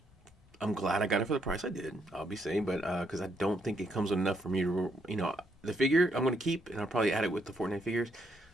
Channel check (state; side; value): normal; both; correlation 0.75